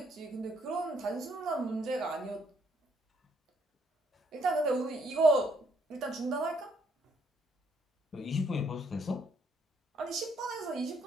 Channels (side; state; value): both; normal; correlation 0.69